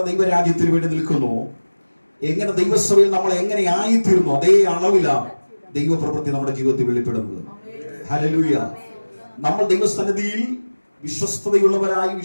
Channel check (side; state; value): both; inverted; correlation -1.00